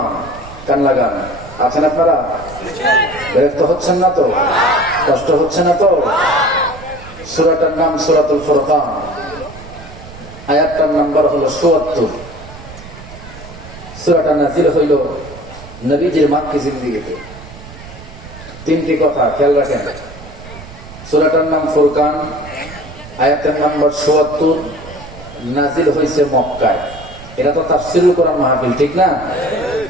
কান লাগান আছেন আপনারা? বিরক্ত হচ্ছেন না তো? কষ্ট হচ্ছে না তো? সূরাটার নাম সূরাতুল ফুরকান, আয়াতটার নাম্বার হলো ৭৪। সূরাটা নাযিল হইল নবীজির মাক্কি জিন্দেগিতে। 3টি কথা খেয়াল রাখেন। সূরাটার নাম ফুরকান, আয়াতের নাম্বার ৭৪, নাযিল হয়েছে মক্কায়। এটা তো তাফসীরুল কোরআন মাহফিল, ঠিক না?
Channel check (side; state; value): right; noise; rumble, 16 dB below the sound